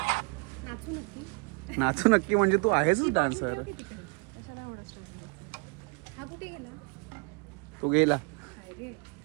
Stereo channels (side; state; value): left; quieter; 32.4 dB